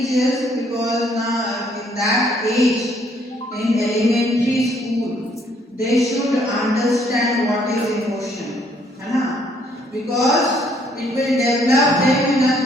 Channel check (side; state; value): both; normal; correlation 0.66